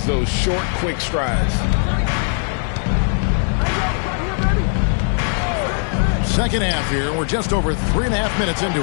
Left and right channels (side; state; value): right; silent; 56 dB below the other